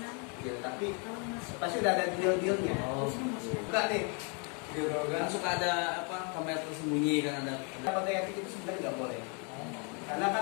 Ya, tapi kalau masuk. pasti udah ada deal-dealnya. Oh. Buka deh. Gitu Kan kan. suka ada apa kamera tersembunyi kan ada. Kode etik itu sebenarnya nggak boleh. Karena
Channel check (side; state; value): right; quieter; 36.0 dB